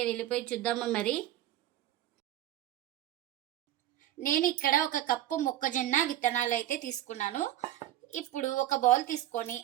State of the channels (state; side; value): quieter; left; 13.2 dB